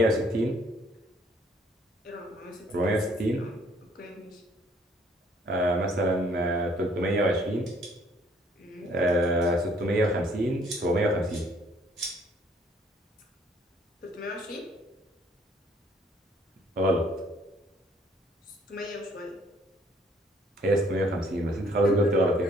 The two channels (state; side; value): normal; both; correlation 0.62